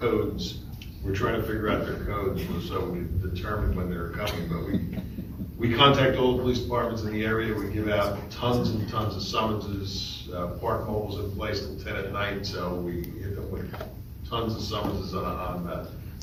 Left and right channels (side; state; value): both; identical; correlation 1.00